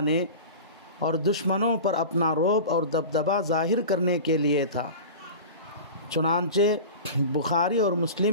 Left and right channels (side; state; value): both; inverted; correlation -0.33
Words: اور دشمنوں پر اپنا رعب اور دبدبہ ظاہر کرنے کے لیے تھا۔ چنانچہ بخاری اور